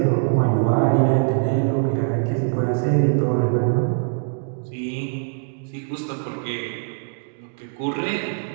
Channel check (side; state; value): left; silent; digital silence